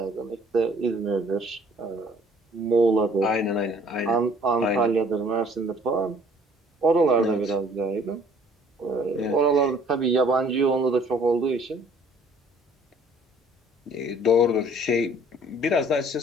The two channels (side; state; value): both; normal; correlation 0.57